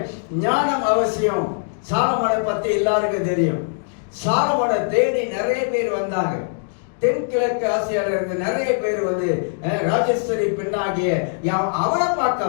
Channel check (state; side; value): silent; right; digital silence